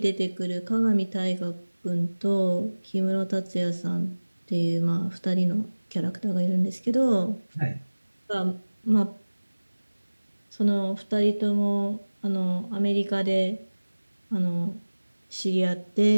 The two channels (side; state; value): both; inverted; correlation -1.00